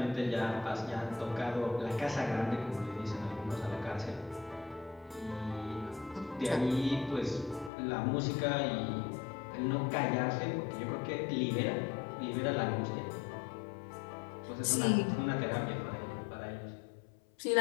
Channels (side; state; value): right; drops out; at 7.7 s